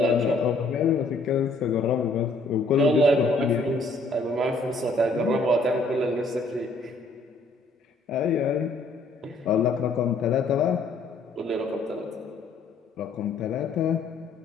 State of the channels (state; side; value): quieter; right; 3.2 dB